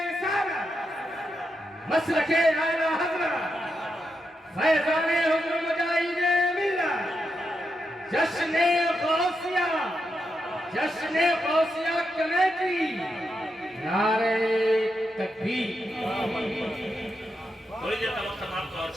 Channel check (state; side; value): normal; both; correlation 0.85